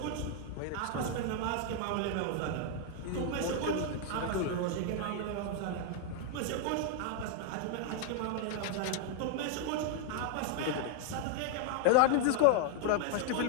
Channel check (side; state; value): both; different; correlation 0.00